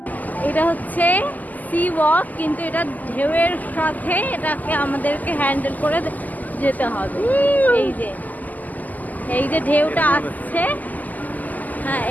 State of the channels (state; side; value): late; right; 0.081 ms